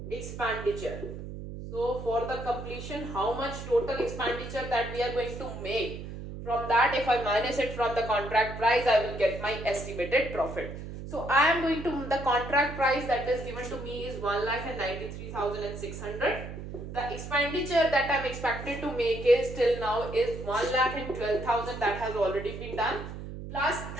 expenditure. So for the completion, how much total expenditure that we are going to make, from that if I minus it from the contract price, I will get my estimated profit. So I am going to, the contract price that is given to me is 1,93,600. The expenditure that I am expected to make is till now is 1,12,000, that has already been done, plus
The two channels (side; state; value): right; noise; hum, 9 dB below the sound